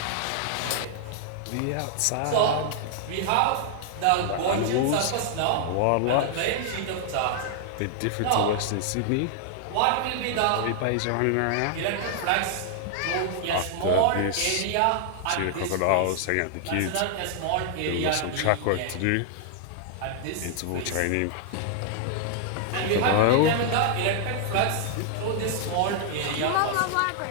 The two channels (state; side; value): different; both; correlation -0.01